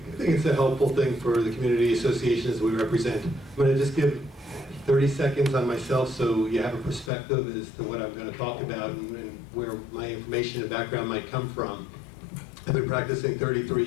it's a helpful thing for the community associations we represent. I'm going to just give 30 seconds on myself so you have a perspective as to what I'm going to talk about and where my information and background might come from. I've been practicing 33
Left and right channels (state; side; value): drops out; right; at 7.1 s